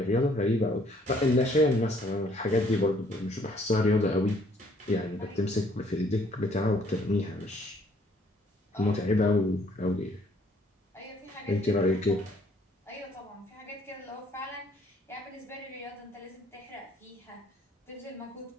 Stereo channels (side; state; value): both; normal; correlation 0.63